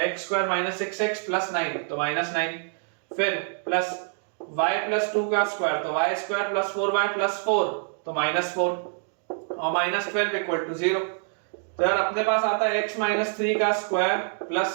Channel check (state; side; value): silent; left; 61 dB below the other